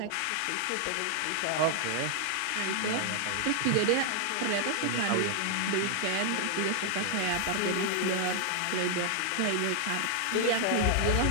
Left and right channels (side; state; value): both; different; correlation 0.00